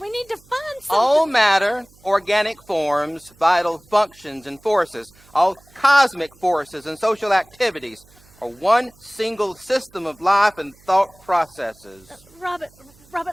We need to find something. All matter, organic forms, vital functions and forces, all cosmic forces and social activities are one single system of life and thought processes.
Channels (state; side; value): noise; right; hum, 28 dB below the sound